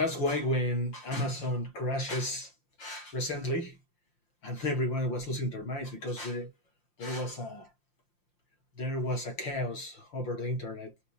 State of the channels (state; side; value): late; right; 5.7 ms